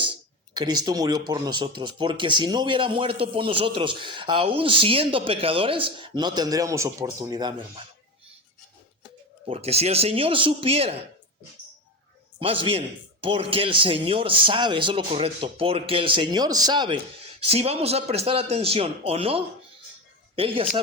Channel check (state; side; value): normal; both; correlation 0.22